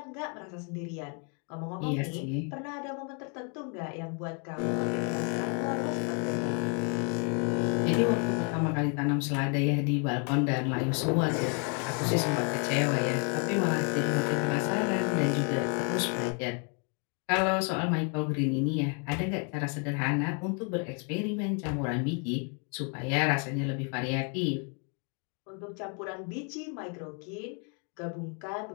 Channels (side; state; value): right; quieter; 38.5 dB